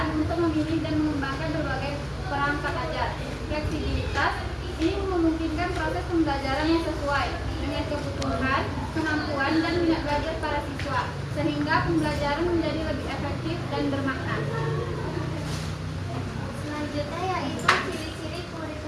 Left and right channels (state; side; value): identical; both; correlation 1.00